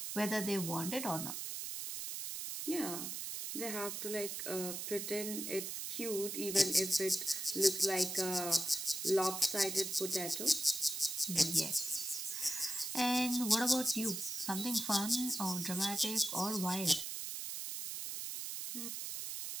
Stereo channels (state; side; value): noise; right; hiss, 5 dB below the sound